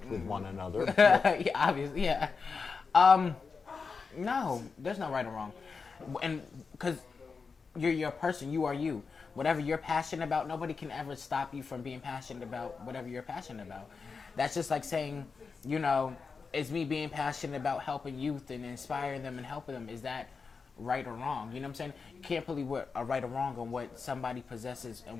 with one another. Yeah, obviously, yeah. No, there's no right or wrong. And because you're a person, you are you. Whatever you're passionate about, nobody can ever stop you from being passionate about whatever you're passionate about. That's just like saying, it's me being passionate about helping youth and inspiring them and helping them. Is that right or wrong? You know what I'm saying? You can't put a right or wrong on what somebody possesses and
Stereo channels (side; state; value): right; quieter; 5.0 dB